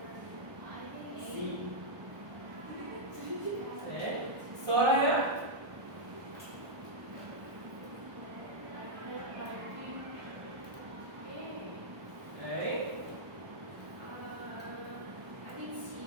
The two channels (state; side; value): late; left; 1.2 ms